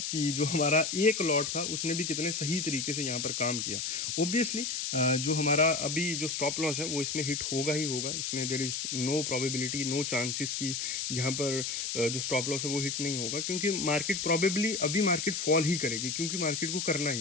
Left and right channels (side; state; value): left; noise; hiss, 2 dB below the sound